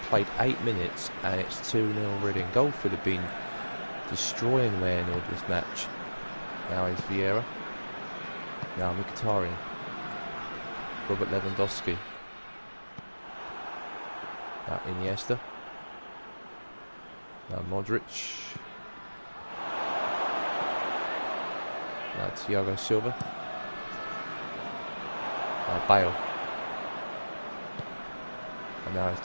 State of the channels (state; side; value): inverted; both; correlation -1.00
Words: played 8 minutes and it's 2-0 already. And Goldfield have been destroying Wearnall this match. Now is Vieira. Now Mkhitaryan. Robert Lewandowski. Now Iniesta. Now Modric. Now Thiago Silva. Now Bale. And now it's